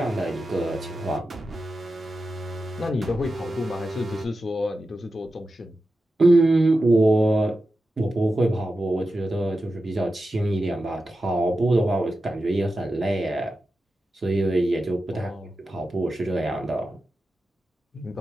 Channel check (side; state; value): both; normal; correlation 0.91